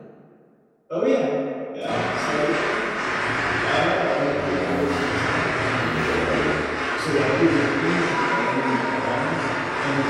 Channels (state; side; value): identical; both; correlation 1.00